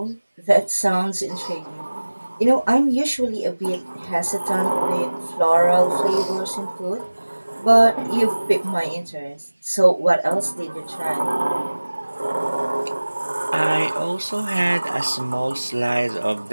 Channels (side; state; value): both; inverted; correlation -1.00